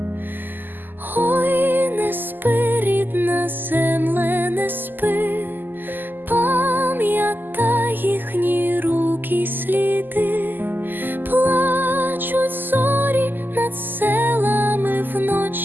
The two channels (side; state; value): left; late; 0.090 ms